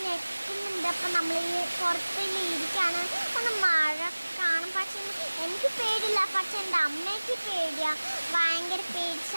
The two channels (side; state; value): both; inverted; correlation -1.00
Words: ഞെക്കുന്നുണ്ട്. അപ്പം നമ്മൾ ഈ പുറത്തിൽ ഇരിക്കുകയാണ്. ഒന്ന് മഴ കാണും. പക്ഷെ എനിക്ക് പേടിയില്ല, പക്ഷെ എൻ്റെ അമ്മയ്ക്ക് പേടിയാണ്, ഭയങ്കര പേടി